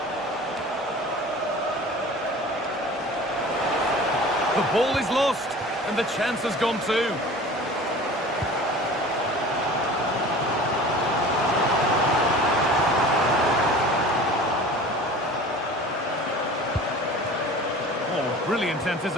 The ball is lost, and the chance has gone too. Brilliant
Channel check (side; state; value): both; normal; correlation 0.41